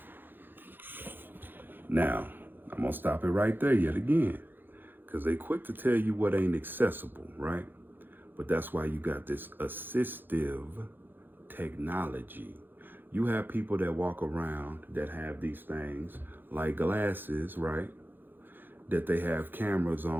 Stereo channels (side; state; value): left; late; 0.095 ms